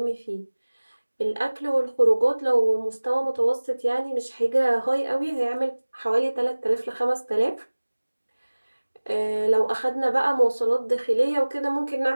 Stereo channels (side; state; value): both; inverted; correlation -1.00